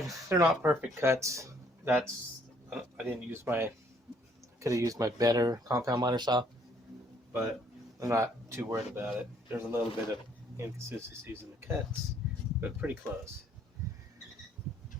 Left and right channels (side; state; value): both; normal; correlation 0.64